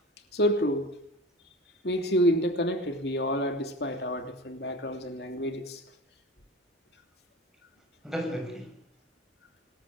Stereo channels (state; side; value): normal; both; correlation 0.34